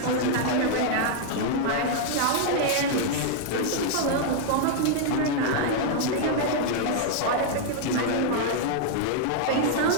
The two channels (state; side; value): different; both; correlation 0.00